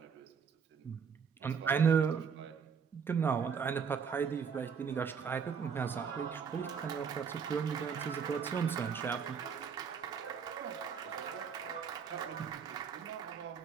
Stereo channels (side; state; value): left; quieter; 6.6 dB